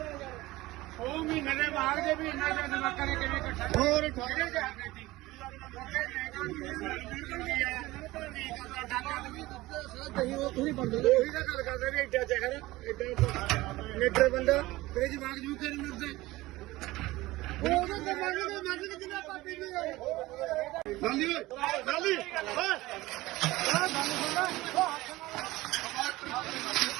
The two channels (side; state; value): left; quieter; 18.8 dB